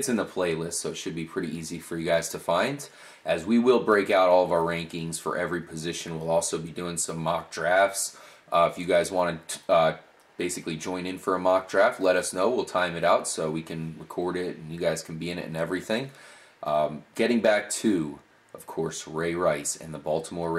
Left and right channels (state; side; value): identical; both; correlation 1.00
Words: in the playlist, so it should be pretty easy for you guys to find. As we will break out all of our rankings for every position, we'll also be doing some mock drafts. If you guys want to basically join in for a mock draft, let us know. We'll time it out so we can record it and you guys can be in it and everything. Getting back to, of course, Ray Rice and the Baltimore